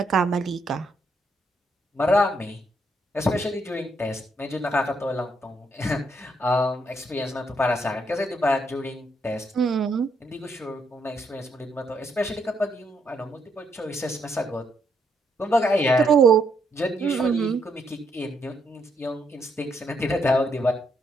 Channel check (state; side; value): normal; both; correlation 0.75